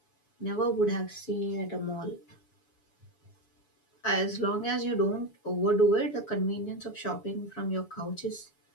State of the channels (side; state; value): right; late; 7.0 ms